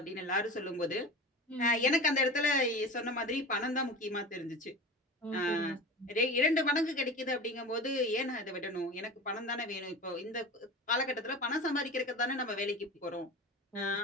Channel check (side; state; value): both; normal; correlation 0.32